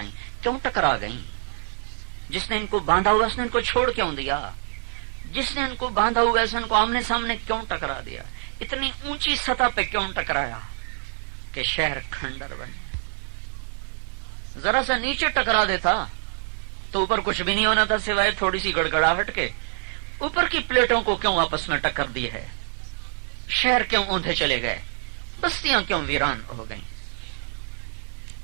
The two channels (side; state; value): left; silent; digital silence